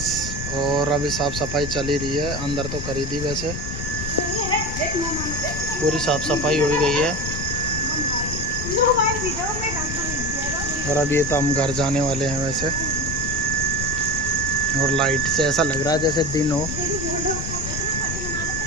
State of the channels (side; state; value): left; noise; rumble, 5 dB below the sound